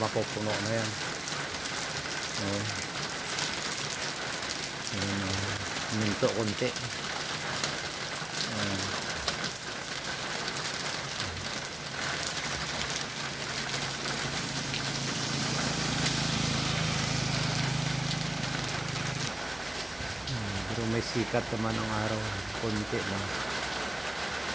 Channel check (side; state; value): right; noise; rumble, 25 dB below the sound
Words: na yan. Minto konti. Pero may sikat naman ang araw. Konti lang.